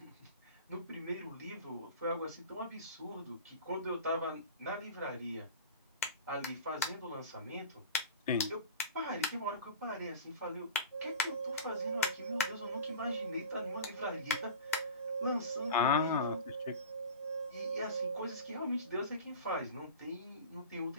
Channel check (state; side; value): inverted; both; correlation -0.35